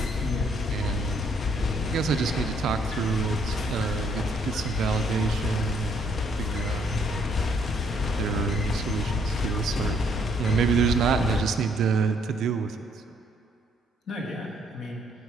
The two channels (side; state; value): both; normal; correlation 0.68